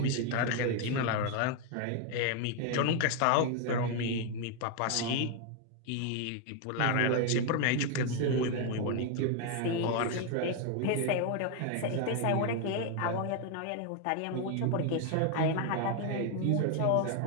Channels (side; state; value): both; different; correlation 0.01